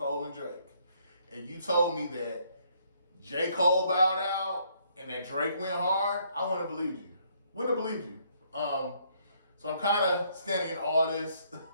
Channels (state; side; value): inverted; both; correlation -0.68